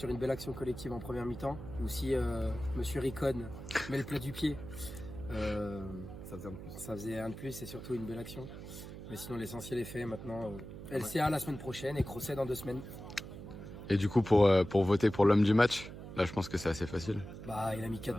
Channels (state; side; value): noise; right; hum, 11 dB below the sound